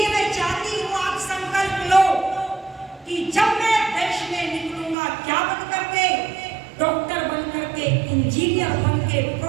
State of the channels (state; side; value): drops out; left; at 5.0 s